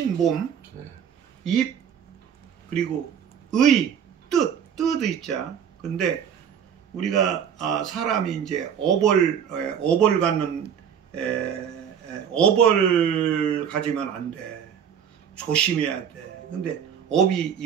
입, 그리고 뜻 있자. 근데 우리가 사람이 이제 업을 갖는 업을 가지면 안 돼. 조심해야 돼. 근데 업이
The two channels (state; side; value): quieter; left; 8.2 dB